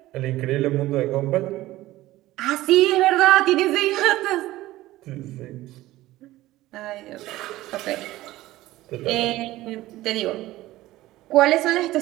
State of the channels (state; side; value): quieter; left; 16.7 dB